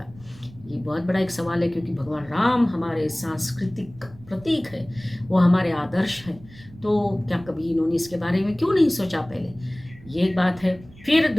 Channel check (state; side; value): noise; right; rumble, 21 dB below the sound